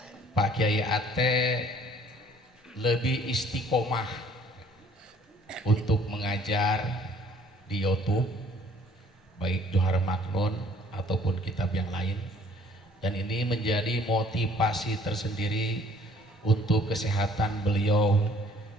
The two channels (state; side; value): normal; both; correlation 0.57